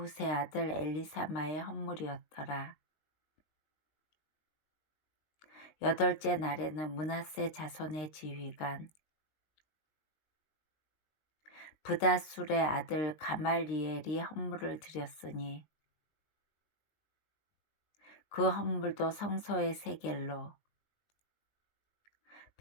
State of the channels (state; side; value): late; right; 19 ms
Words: 아들 엘리사마의 헌물이었더라. 8째 날에는 므낫세 자손의 지휘관 브다술의 아들 가말리엘이 헌물을 드렸으니 그 헌물도 성소의 세겔로